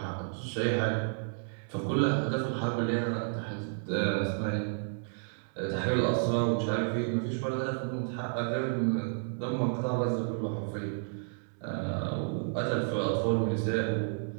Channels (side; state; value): left; silent; digital silence